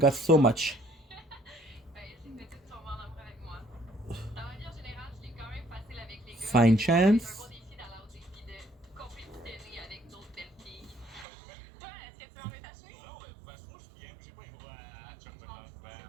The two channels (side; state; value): left; drops out; at 11.2 s